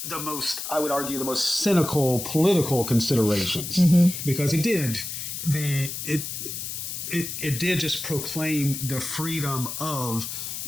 the most, I would argue, the most cynical political considerations, because it did just proclaim the freedom of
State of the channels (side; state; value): left; noise; hiss, 6 dB below the sound